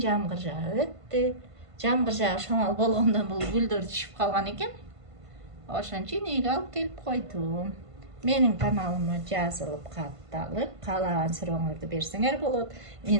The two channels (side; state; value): left; late; 1.5 ms